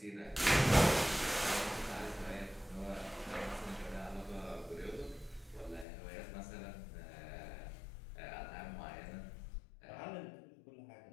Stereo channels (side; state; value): right; drops out; at 5.9 s